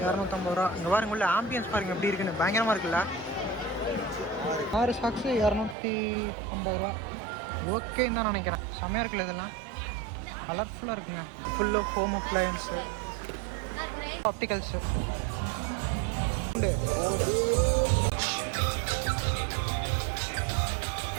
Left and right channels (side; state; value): left; drops out; at 5.8 s